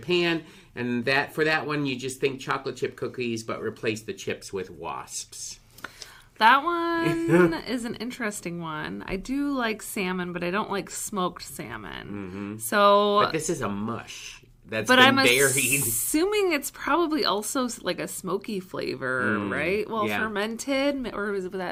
and for that one you just think chocolate chip cookies but replace the chips with wasps? That one is an interesting one. I do like salmon, but I don't like smoked salmon. Mm-hmm. But this is a mush that's been buried. Assuming it's probably also like a smoky flavor, right? Well, fermented, or would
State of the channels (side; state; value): both; identical; correlation 1.00